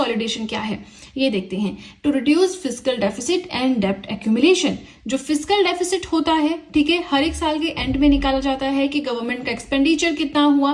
क्या है ये देखते हैं। To reduce fiscal deficit and डेब्ट एक्यूमुलेशन। जो फिस्कल डेफिसिट होता है, ठीक है, हर एक साल के एंड में निकाला जाता है कि गवर्नमेंट का एक्सपेंडिचर कितना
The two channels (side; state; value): both; identical; correlation 1.00